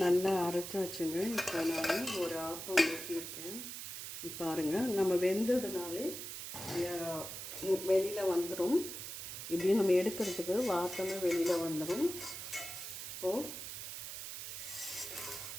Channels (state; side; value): noise; right; hiss, 8 dB below the sound